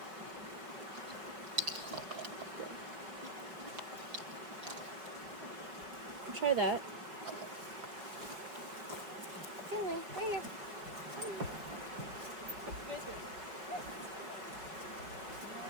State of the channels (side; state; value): left; late; 5.4 ms